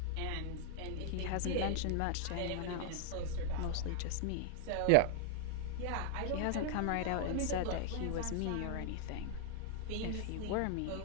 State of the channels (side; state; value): both; different; correlation 0.00